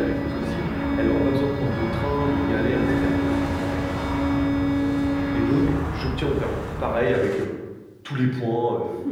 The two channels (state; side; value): identical; both; correlation 1.00